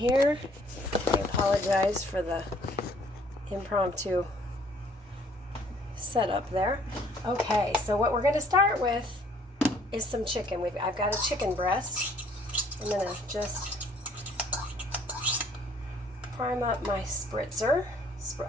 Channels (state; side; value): normal; both; correlation 0.60